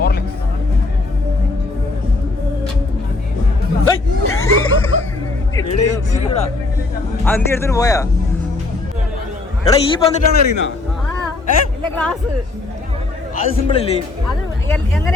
എന്തി എടുത്തിട്ട് പോയാ? എടാ ഈ പന്നിട്ടാണ് അറിയുന്ന? അത് സിമ്പിൾ അല്ലേ? എങ്ങനെ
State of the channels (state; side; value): quieter; right; 3.2 dB